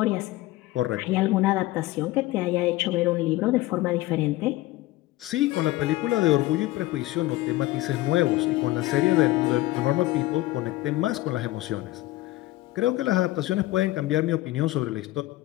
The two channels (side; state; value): right; quieter; 17.5 dB